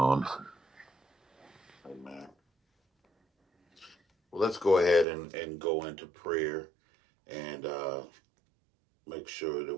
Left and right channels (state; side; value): drops out; left; at 5.1 s